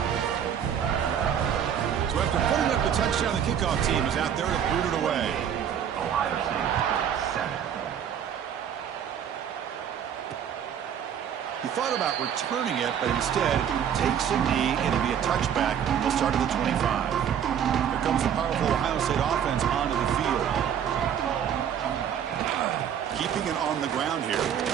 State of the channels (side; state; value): left; quieter; 8.8 dB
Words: So after putting up the touchdown, the kickoff team is out there to boot it away. He thought about returning it, but instead takes a knee. It'll be a touchback. He'll start at the 25. Here comes the powerful Ohio State offense onto the field. Keeping it on the ground here.